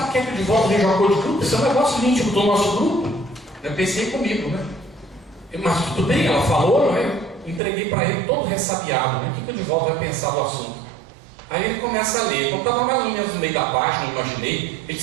quer que o Divaldo veja um acordo de grupo? Isso é um negócio íntimo do nosso grupo. Eu pensei comigo, né? Mas tudo bem, ela falou, não é? Entreguei para ele todo ressabiado, né? O que o Divaldo vai pensar do assunto? Aí ele começa a ler. Quando estava mais ou menos no meio da página, eu imaginei, ele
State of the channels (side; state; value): left; drops out; at 7.6 s